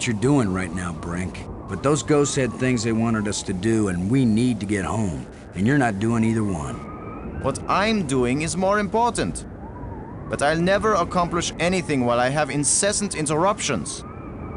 you're doing right now, Brink, but those ghosts had things they wanted us to do, and we need to get home, and you're not doing either one. What I'm doing is more important. But I'll never accomplish anything while I have incessant interruptions.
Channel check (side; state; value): both; identical; correlation 1.00